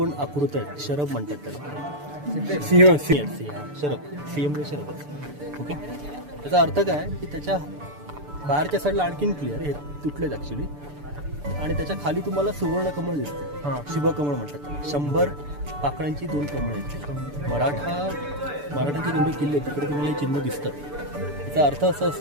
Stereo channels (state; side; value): late; left; 6.9 ms